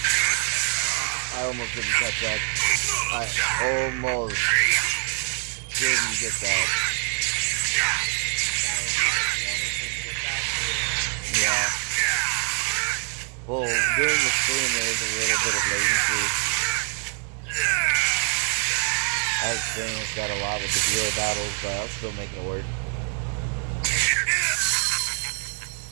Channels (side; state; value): left; quieter; 38.7 dB